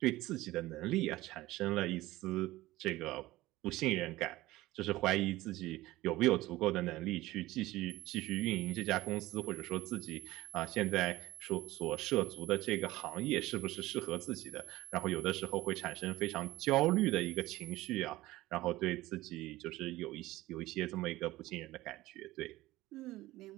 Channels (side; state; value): left; quieter; 17.8 dB